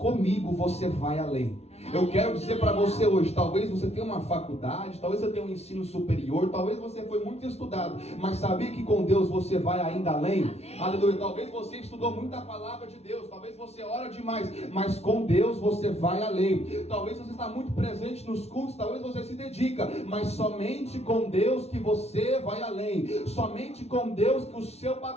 você vai além. Eu quero dizer para você hoje: talvez você tenha uma faculdade, talvez você tenha um ensino superior, talvez você foi muito estudado, mas sabia que com Deus você vai ainda além? Aleluia. Talvez você estudou muita palavra de Deus, talvez você ora demais, mas com Deus você vai além. Talvez você está muito presente nos cultos, talvez você se dedica, mas somente com Deus que você vai além. Somente com Deus que o seu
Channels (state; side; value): late; right; 0.31 ms